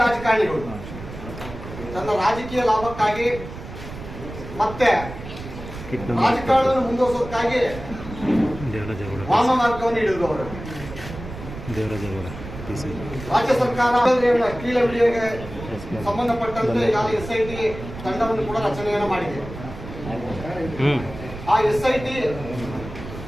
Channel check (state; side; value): noise; right; rumble, 11 dB below the sound